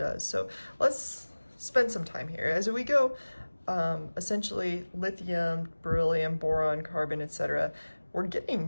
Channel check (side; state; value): both; inverted; correlation -1.00